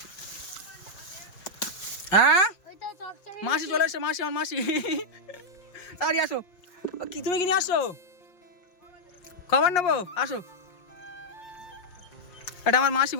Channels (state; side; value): late; right; 5.6 ms